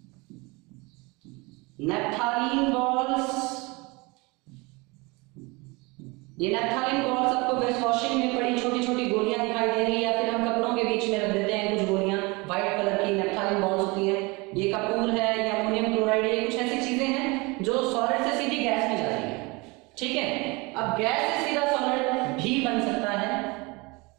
नेप्थालीन बॉल्स, ये नेप्थालीन बॉल्स आपको वेस्ट वॉशिंग में पड़ी छोटी छोटी गोलियां दिखाई दे रही है, या फिर हम कपड़ों के बीच में रख देते हैं कुछ गोलियां व्हाइट कलर की नेप्थालीन बॉल्स होती है। ये कपूर है, ये अमोनियम क्लोराइड, ये कुछ ऐसी चीजें हैं जो सॉलिड से सीधी गैस में जाती है। ठीक है, अब गैस से सीधा सॉलिड भी बन सकता है,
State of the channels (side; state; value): left; quieter; 25.9 dB